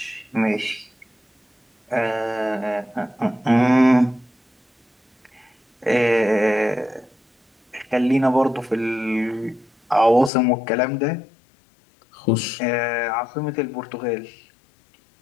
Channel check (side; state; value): right; drops out; at 10.3 s